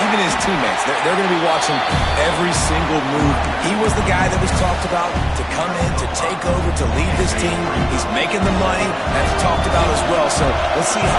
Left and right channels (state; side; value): identical; both; correlation 1.00